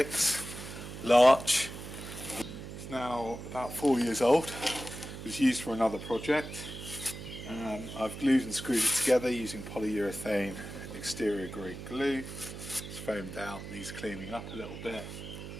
large. It's now about 4 years old. It was used for another project. I've glued and screwed it together using polyurethane exterior grade glue. It's foamed out, needs cleaning up a little bit.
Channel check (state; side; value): noise; right; hum, 10 dB below the sound